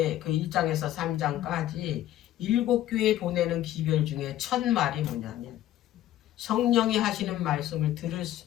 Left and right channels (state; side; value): quieter; right; 13.1 dB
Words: 그 1장에서 3장까지 7교회 보내는 기별 중에 첫 말이 뭐냐면 성령이 하시는 말씀을 들을